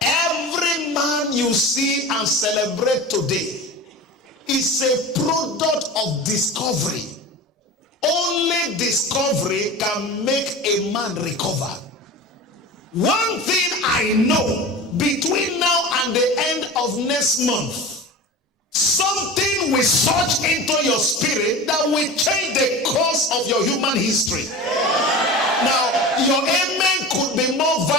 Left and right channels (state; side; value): normal; both; correlation 0.32